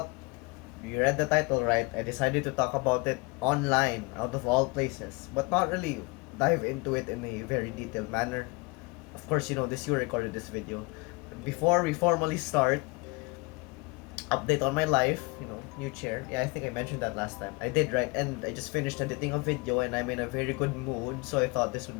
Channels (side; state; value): right; quieter; 27.3 dB